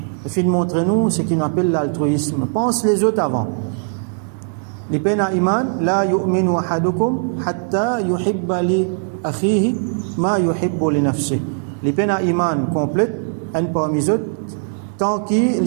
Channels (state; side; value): silent; left; 60 dB below the other